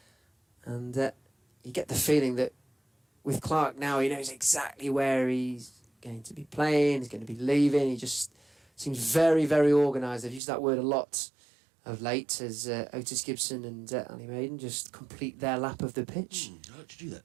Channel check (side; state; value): left; drops out; at 10.4 s